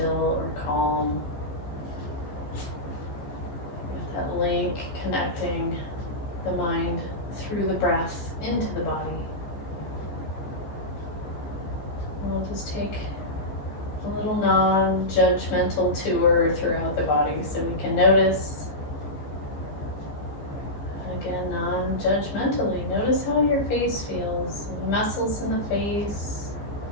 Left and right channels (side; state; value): right; late; 14 ms